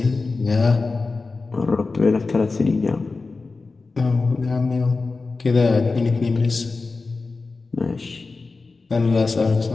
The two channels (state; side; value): quieter; right; 3.9 dB